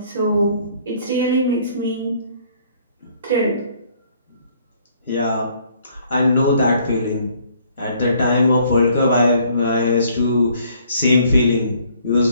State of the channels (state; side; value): inverted; both; correlation -0.62